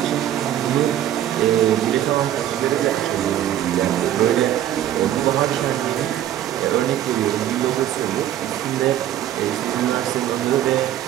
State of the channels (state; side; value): quieter; left; 11.8 dB